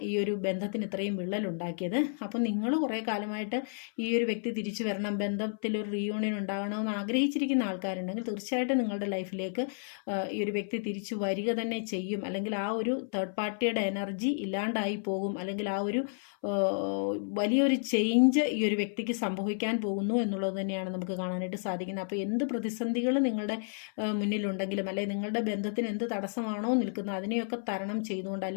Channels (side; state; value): right; silent; 57 dB below the other